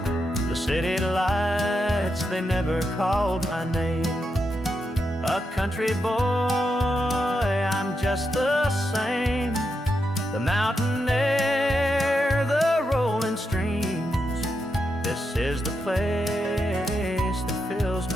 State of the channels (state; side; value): normal; both; correlation 0.84